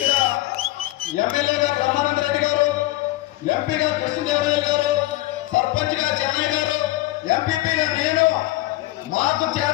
ఎమ్మెల్యేగా బ్రహ్మానంద రెడ్డి గారు, ఎంపీగా కృష్ణదేవరాయలు గారు, సర్పంచ్ గా చెన్నై గారు, ఎంపీపీగా నేను, మాకు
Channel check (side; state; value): right; quieter; 18.1 dB